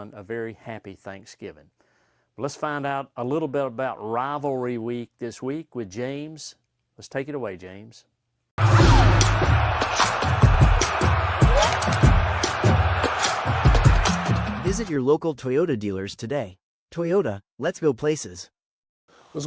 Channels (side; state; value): both; identical; correlation 1.00